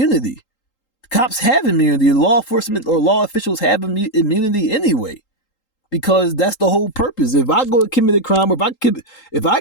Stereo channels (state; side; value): late; right; 3.8 ms